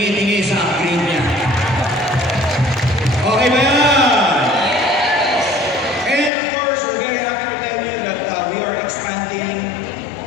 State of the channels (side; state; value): right; drops out; at 6.3 s